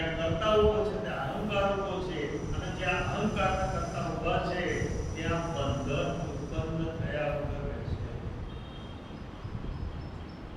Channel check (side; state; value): both; identical; correlation 1.00